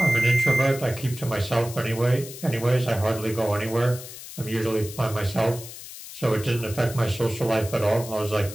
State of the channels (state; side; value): noise; left; hiss, 13 dB below the sound